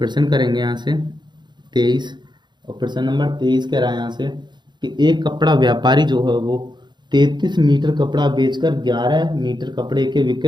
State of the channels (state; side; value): late; left; 0.21 ms